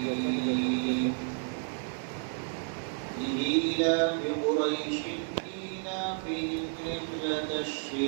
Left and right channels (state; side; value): silent; left; digital silence